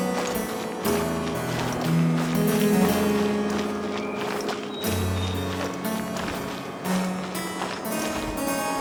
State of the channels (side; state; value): both; identical; correlation 1.00